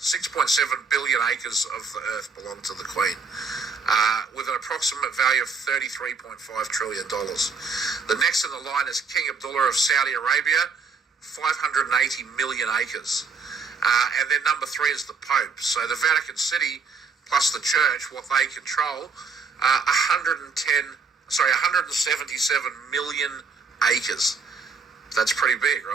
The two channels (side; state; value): left; quieter; 4.8 dB